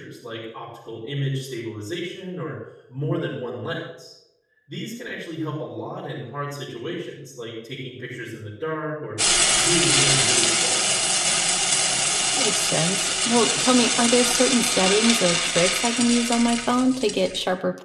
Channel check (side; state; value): both; identical; correlation 1.00